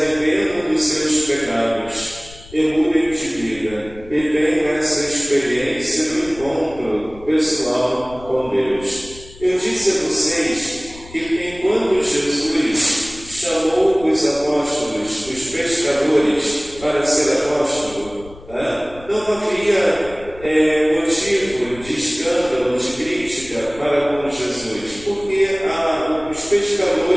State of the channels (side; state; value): left; noise; rumble, 19 dB below the sound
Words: dos seus pecados e mudem de vida e tenham essa experiência do encontro pessoal com Deus. Eu disse a vocês que enquanto Jesus chamou os apóstolos, os pescadores, para ser apóstolo, não havia motivo de escândalo, de crítica para com Jesus, porque os